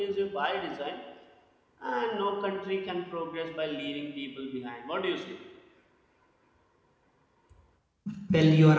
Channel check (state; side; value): identical; both; correlation 1.00